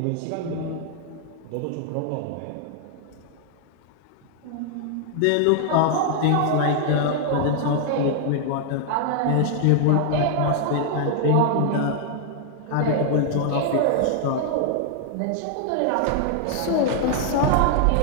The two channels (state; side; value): different; both; correlation 0.00